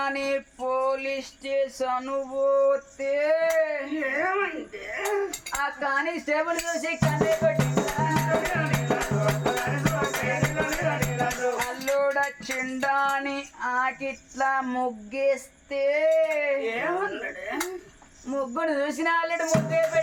పోలీస్ స్టేషన్ పోతే ఏమైంది ఆ కానిస్టేబుల్ చూసి కన్నే పెట్టిండురా అల్లుడొచ్చిండాని ఆకిట్లా ముగ్గేస్తే ఏమన్నాడు ముగ్గుడు చూసిన అల్లుడు ముగ్గే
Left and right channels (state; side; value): identical; both; correlation 1.00